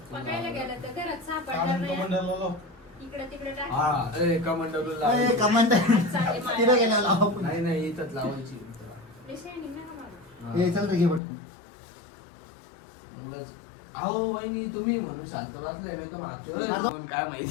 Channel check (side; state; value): right; drops out; at 11.2 s